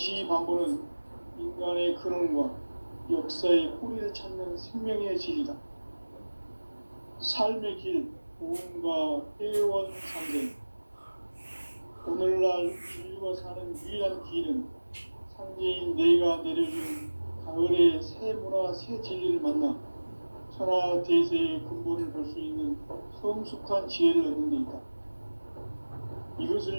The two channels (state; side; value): inverted; both; correlation -1.00